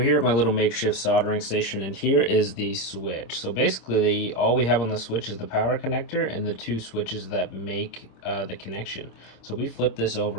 at my little makeshift soldering station, and here is the switch. So basically all we have on the switch is the power connector and the two switches that make the connection. So we flip this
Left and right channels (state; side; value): late; right; 26 ms